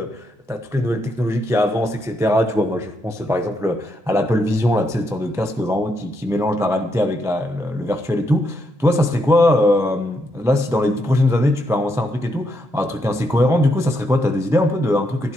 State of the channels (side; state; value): both; normal; correlation 0.79